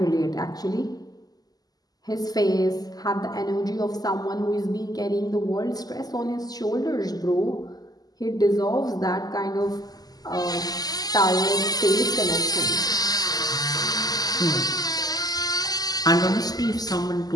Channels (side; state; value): right; late; 0.18 ms